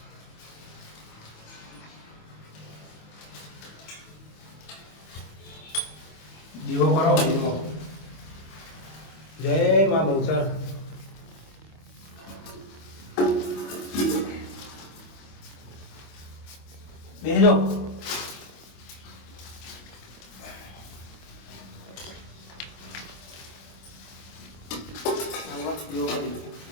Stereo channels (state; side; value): late; right; 25 ms